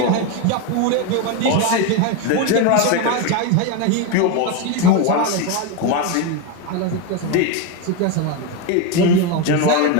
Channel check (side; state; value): both; different; correlation 0.03